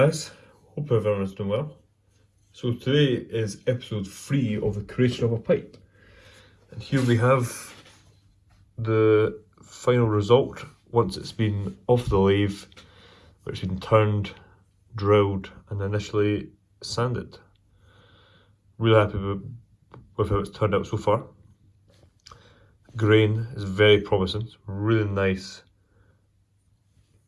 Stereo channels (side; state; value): both; identical; correlation 1.00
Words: Hope everyone's doing well. So today is episode 3 of the creation of a pipe. And here we have the final result once it's been off the lathe, which has been turned, drilled and initially sanded. Really happy with how it's turned out so far. Grain is very promising. It's really nice